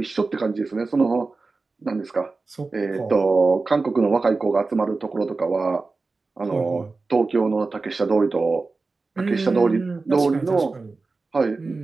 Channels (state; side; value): quieter; left; 3.8 dB